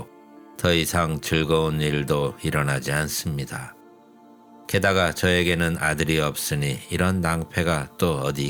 더 이상 즐거운 일도 일어나지 않습니다. 게다가 저에게는 아들이 없으니 이런 낭패가 또 어디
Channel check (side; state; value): both; identical; correlation 1.00